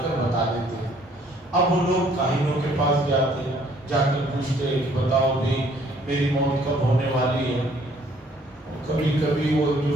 کر بتا دیتے ہیں۔ اب وہ لوگ کاہنوں کے پاس جاتے ہیں، جا کر پوچھتے ہیں کہ بتاؤ بھی میری موت کب ہونے والی ہے۔ کبھی کبھی وہ جو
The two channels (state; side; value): normal; both; correlation 0.62